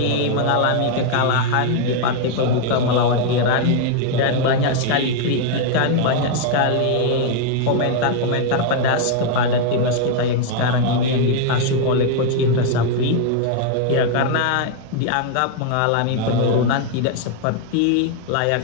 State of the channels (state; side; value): different; both; correlation 0.00